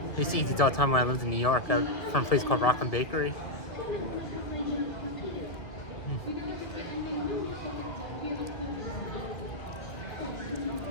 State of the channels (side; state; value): right; late; 1.9 ms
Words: used to eat these all the time when I lived in New York, from a place called Rockland Bakery.